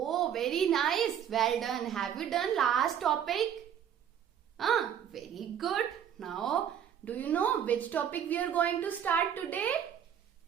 very nice, well done. Have you done last topic? Very good. Now, do you know which topic we are going to start today?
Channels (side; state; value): left; quieter; 9.1 dB